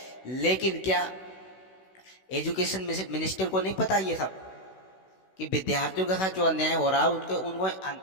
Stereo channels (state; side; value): late; right; 16 ms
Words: लेकिन क्या एजुकेशन मिनिस्टर को नहीं पता ये सब कि विद्यार्थियों के साथ जो अन्याय हो रहा है उनको